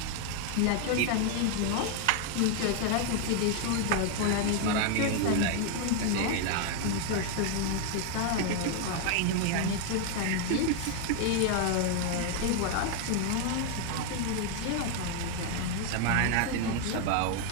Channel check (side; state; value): both; different; correlation 0.00